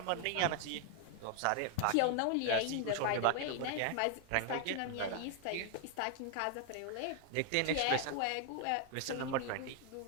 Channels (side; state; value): both; different; correlation 0.00